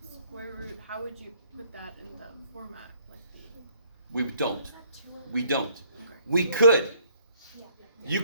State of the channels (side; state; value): both; inverted; correlation -0.64